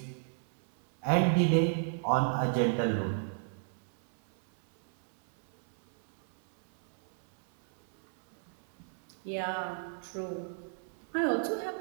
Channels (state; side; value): silent; left; 56 dB below the other